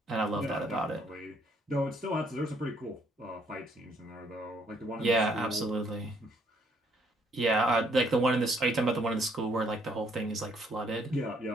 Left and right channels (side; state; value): both; normal; correlation 0.67